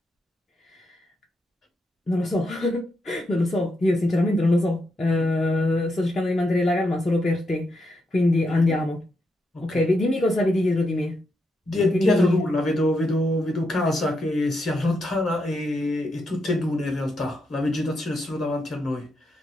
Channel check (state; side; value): normal; both; correlation 0.82